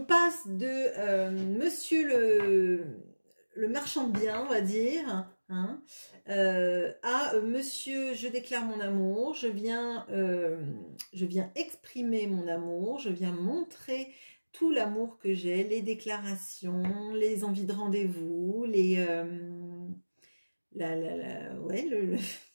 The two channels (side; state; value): both; inverted; correlation -1.00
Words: de monsieur le marchand de biens, on va dire, hein, à monsieur, je déclare mon amour, je viens exprimer mon amour, je viens montrer tout l'amour que j'ai, les déclarations, les envies de rendez-vous, le